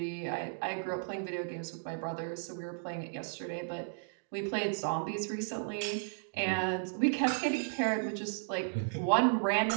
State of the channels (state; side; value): silent; left; digital silence